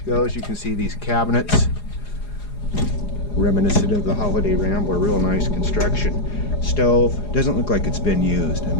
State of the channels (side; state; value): right; late; 4.8 ms